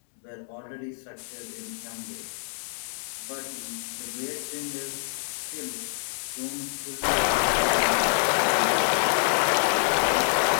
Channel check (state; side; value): silent; right; digital silence